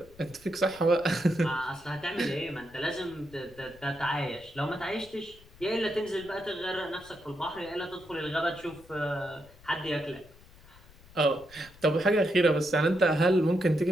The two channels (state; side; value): noise; left; rumble, 24 dB below the sound